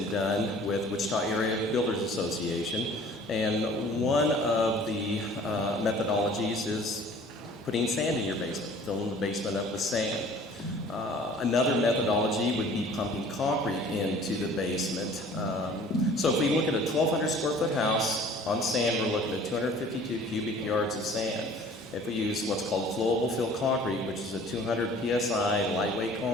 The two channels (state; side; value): normal; both; correlation 0.50